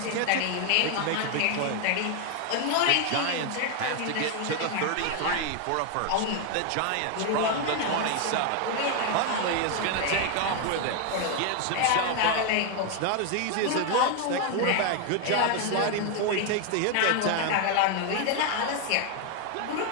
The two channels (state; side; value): different; both; correlation 0.01